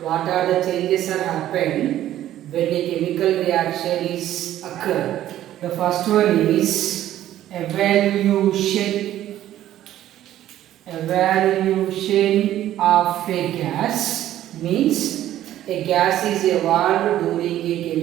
What are the changes are happen when a chemical reaction is occur? The first one is evaluation. Evaluation of a gas means a gas is evolved during a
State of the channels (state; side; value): quieter; left; 12.8 dB